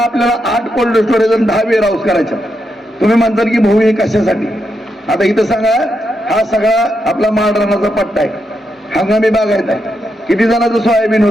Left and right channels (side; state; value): both; normal; correlation 0.83